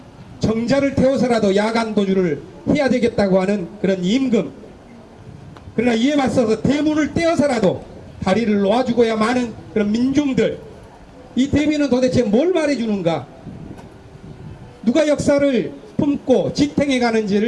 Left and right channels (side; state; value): both; identical; correlation 1.00